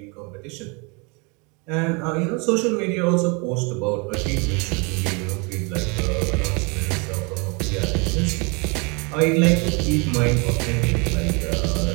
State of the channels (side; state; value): left; quieter; 31.3 dB